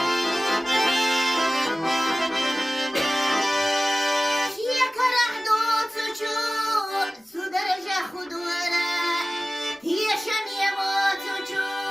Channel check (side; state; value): both; normal; correlation 0.97